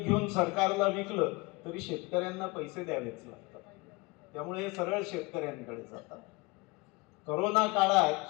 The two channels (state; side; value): quieter; right; 25.2 dB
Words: सरकारला विकलं तरी शेतकऱ्यांना पैसे द्यावेच लागतात. त्यामुळे हे सरळ शेतकऱ्यांकडे जातात. करोना